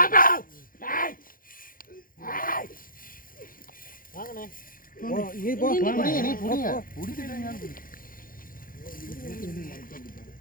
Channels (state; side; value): late; right; 0.41 ms